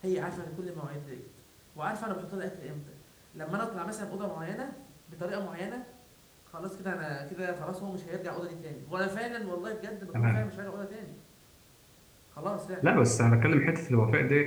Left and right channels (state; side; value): identical; both; correlation 1.00